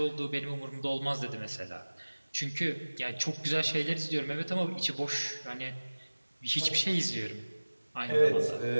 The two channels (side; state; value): both; inverted; correlation -1.00